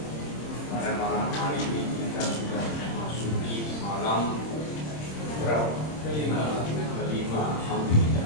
pada malam hari ini kita sudah memasuki malam berapa? Kelima.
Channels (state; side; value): late; right; 26 ms